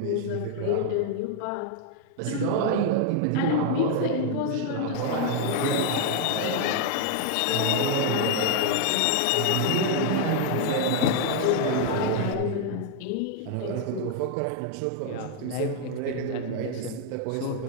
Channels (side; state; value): both; different; correlation 0.00